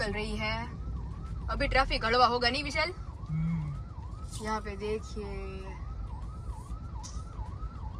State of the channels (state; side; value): identical; both; correlation 1.00